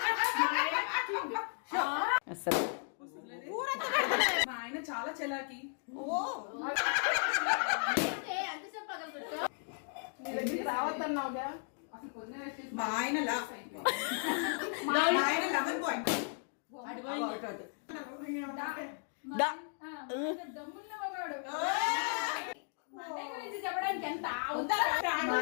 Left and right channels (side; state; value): right; silent; 54 dB below the other